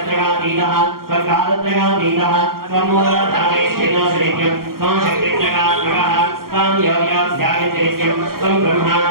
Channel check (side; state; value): left; late; 0.93 ms